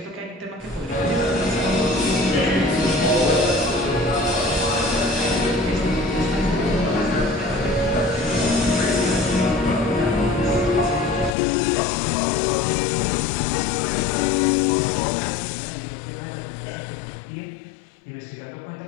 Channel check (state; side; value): drops out; right; at 11.4 s